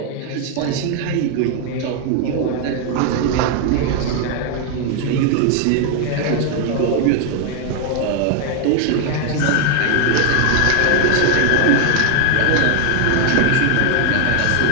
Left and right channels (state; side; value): different; both; correlation 0.00